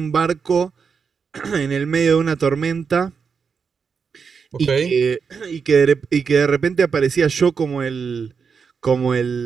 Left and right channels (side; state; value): left; quieter; 5.9 dB